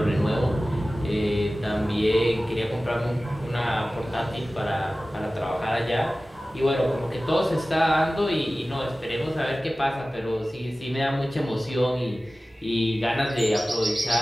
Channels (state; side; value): normal; both; correlation 0.96